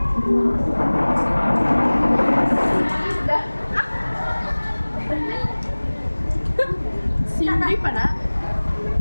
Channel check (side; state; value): both; inverted; correlation -1.00